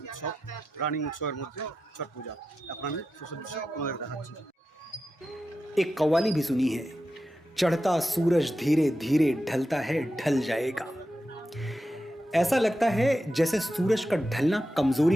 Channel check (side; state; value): both; normal; correlation 0.90